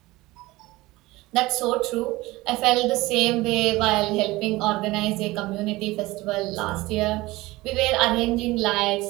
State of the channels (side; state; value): left; quieter; 19.9 dB